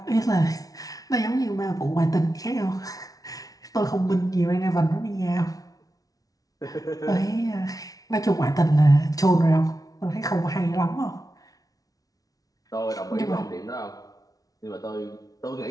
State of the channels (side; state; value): right; late; 0.18 ms